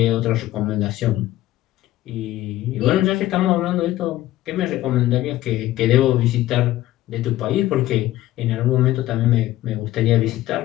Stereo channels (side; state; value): right; quieter; 15.2 dB